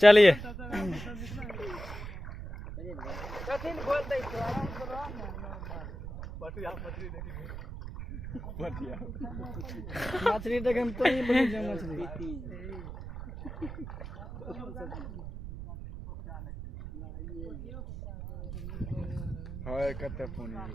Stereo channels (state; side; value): noise; right; rumble, 8 dB below the sound